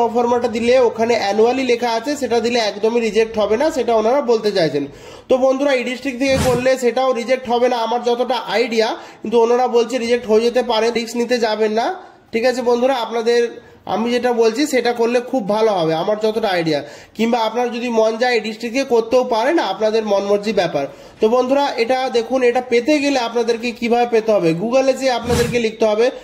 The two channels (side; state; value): both; identical; correlation 1.00